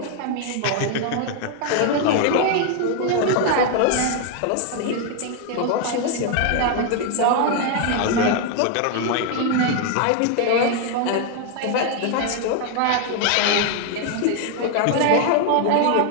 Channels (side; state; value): both; different; correlation 0.00